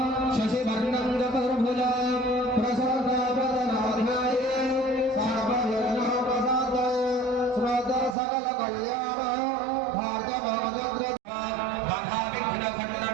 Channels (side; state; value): left; drops out; at 8.2 s